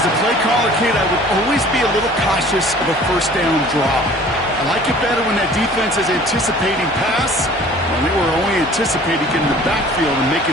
a play caller, Kate, I would always be a little cautious of a first down draw. I like it better when that defense is anticipating pass. Well, they were only anticipating getting the backfield and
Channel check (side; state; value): both; normal; correlation 0.49